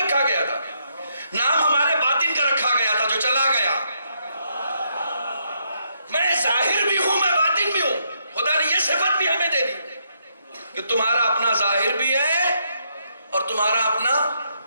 گیا تھا، نام ہمارے باطن کا رکھا گیا تھا جو چلا گیا۔ میں ظاہر بھی ہوں، میں باطن بھی ہوں۔ خدا نے یہ صفت بھی ہمیں دے دی کہ تمہارا اپنا ظاہر بھی ہے اور تمہارا اپنا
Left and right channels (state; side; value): inverted; both; correlation -0.76